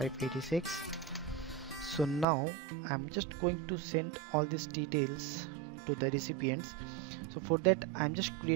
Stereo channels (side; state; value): left; drops out; at 2.2 s